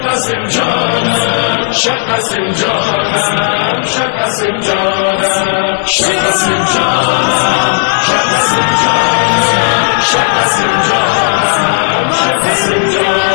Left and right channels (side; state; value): right; silent; digital silence